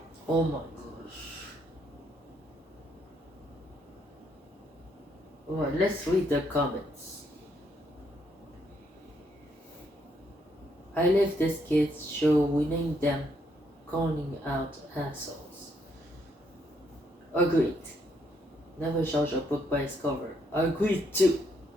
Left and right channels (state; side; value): normal; both; correlation 0.73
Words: Oh my gosh. Alright, let's read the comments. I left this kids show winning them calling out assholes. Agreed. Never judge a book by its cover. Agreed too.